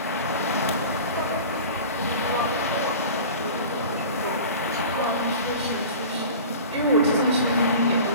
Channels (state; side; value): inverted; both; correlation -0.38